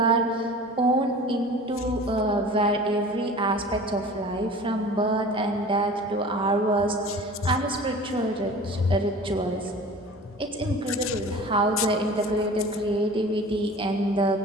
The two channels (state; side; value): normal; both; correlation 0.40